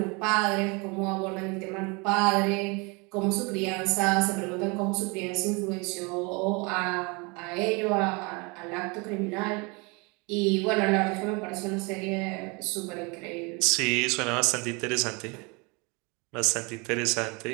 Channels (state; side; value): quieter; left; 29.1 dB